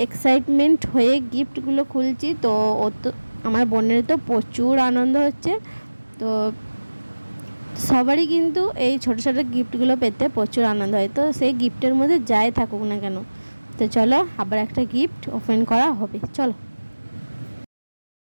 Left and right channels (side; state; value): both; inverted; correlation -1.00